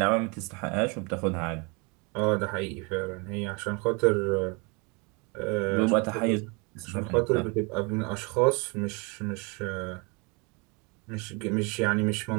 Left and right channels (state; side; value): quieter; left; 30.8 dB